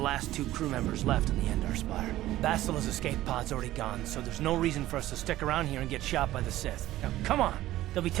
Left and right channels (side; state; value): left; quieter; 15.1 dB